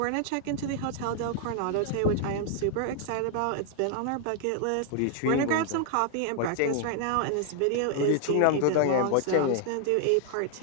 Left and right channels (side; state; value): both; different; correlation 0.00